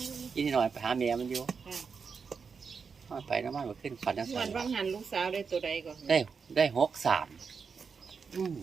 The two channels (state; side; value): quieter; left; 5.6 dB